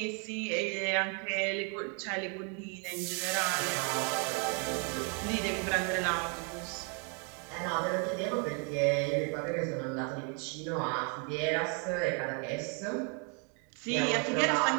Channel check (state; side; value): quieter; left; 37.7 dB